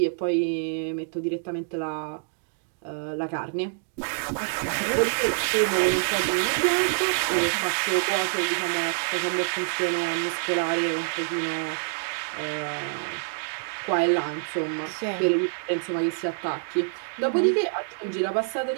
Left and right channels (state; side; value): silent; left; 59 dB below the other